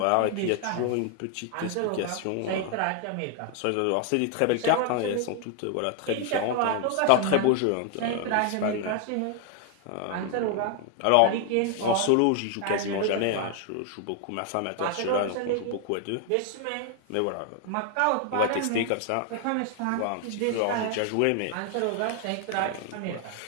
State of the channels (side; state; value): both; different; correlation 0.00